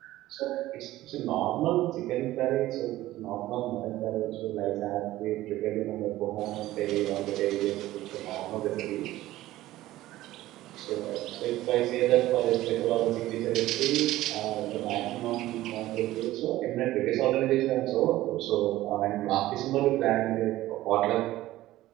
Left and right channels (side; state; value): left; quieter; 15.9 dB